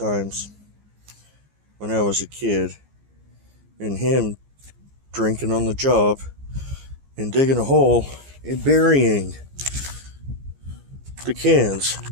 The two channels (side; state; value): left; late; 15 ms